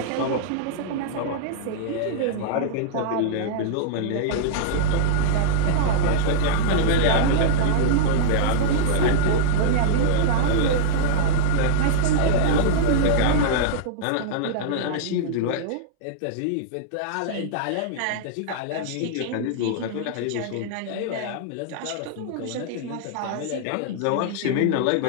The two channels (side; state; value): both; different; correlation -0.01